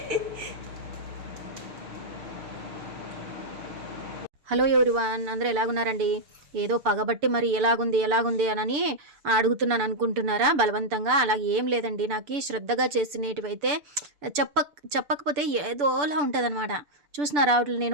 హలో ఎవరివన్, అందరూ ఎలాగున్నారండి? ఏదో పగబట్టి మరి ఎలాగుంది అని అడుగుతున్నాను అనుకుంటున్నారా బలవంతంగా? అలాగే ఏం లేదండి. నాకు శ్రద్ధగా చేసినటివైతే చెప్పకపోతే ఏదోలా ఉంటుంది అనమాట. చూసినారా వాటిని?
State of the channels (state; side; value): late; left; 6.9 ms